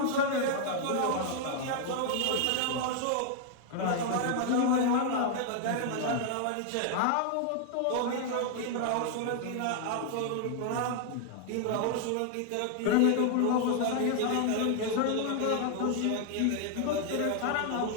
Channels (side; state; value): both; different; correlation 0.00